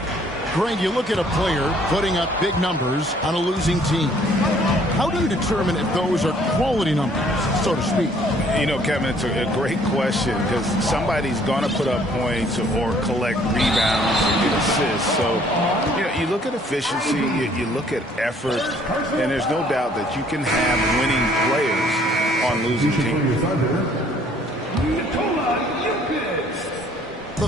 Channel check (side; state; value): both; normal; correlation 0.60